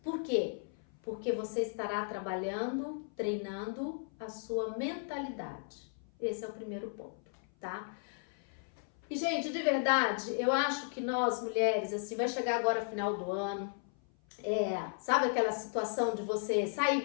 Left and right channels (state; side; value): silent; right; 54 dB below the other